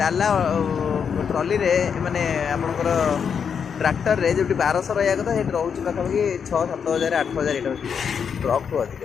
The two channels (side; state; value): right; quieter; 6.9 dB